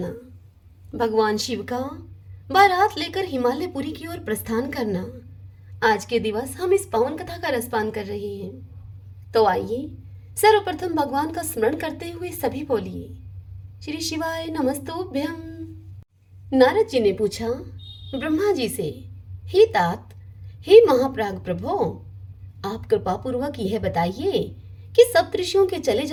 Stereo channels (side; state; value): both; identical; correlation 1.00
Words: भगवान शिव का बारात लेकर हिमालयपुरी की ओर प्रस्थान करना। आज के दिवस हम इस पावन कथा का रसपान कर रहे हैं। तो आइए सर्वप्रथम भगवान का स्मरण करते हुए सभी बोलिए श्री शिवाय नमस्तुभ्यम। नारद जी ने पूछा ब्रह्मा जी से, हे तात, हे महाप्राग प्रभो, आप कृपा पूर्वक यह बताइए कि सप्तऋषियों के चले